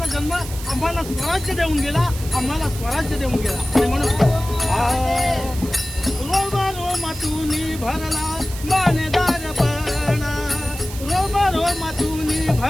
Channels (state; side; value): noise; right; hiss, 13 dB below the sound